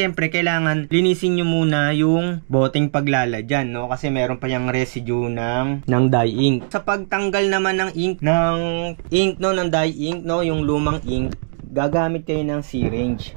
kailangan linisin niyo muna yung boteng paglalagyan, no, kasi meron pa yung residue ng dye ink. Sa pagtanggal naman ng ink no, ng dye ink, no, yung lumang ink, gagamit kayo ng syringe.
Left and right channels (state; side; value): silent; left; digital silence